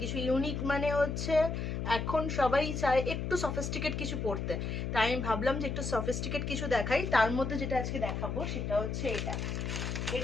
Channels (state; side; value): noise; left; hum, 3 dB below the sound